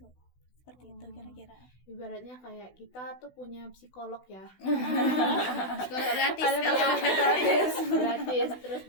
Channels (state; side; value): late; right; 16 ms